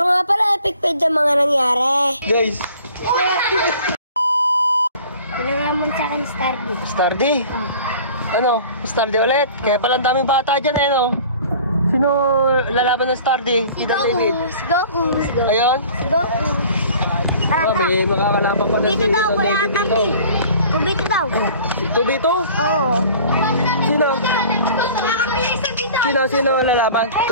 nga pala epic fail ang mga nangyari. Guys. Wala nga mo sa akin Stardy. Stardy? Oh. Ano? Stardy ulit? Kaya pala ang daming bata dyan eh, no? Sino lalaban ng Stardy? Si Goku. Si Goku. Ayun? Si Goku. Oh, may makakalaban pa na Dito daw, wala tampi. 2v2 daw. 2v2? Oo. Sino lalaban?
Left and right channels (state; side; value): inverted; both; correlation -0.47